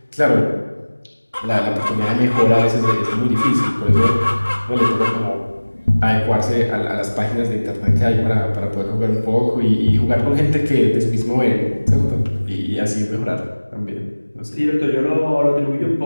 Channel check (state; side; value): inverted; both; correlation -1.00